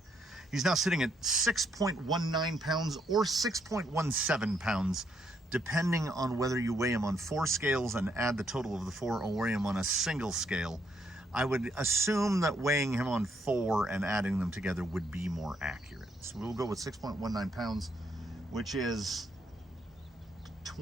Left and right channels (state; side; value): normal; both; correlation 0.74